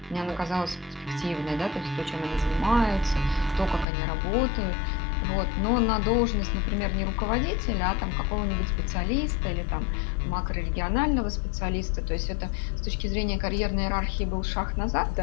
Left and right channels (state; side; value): drops out; right; at 3.9 s